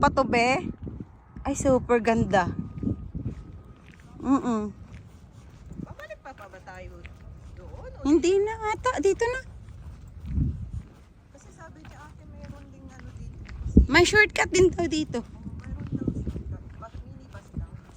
to, be, ay super ganda. Babalik pa ba tayo doon? O Hindi na ata. Dito na. kasi sabi niya ate meron ding ano dito. May shortcut din daw dito. Meron daw siya. Bus minibus lang.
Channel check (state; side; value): identical; both; correlation 1.00